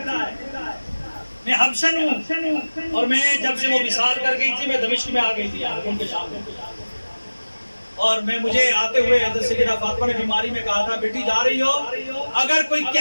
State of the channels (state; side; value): inverted; both; correlation -1.00